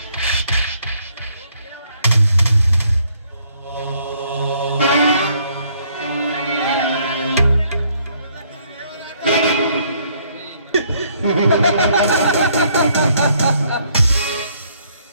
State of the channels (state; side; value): inverted; both; correlation -0.67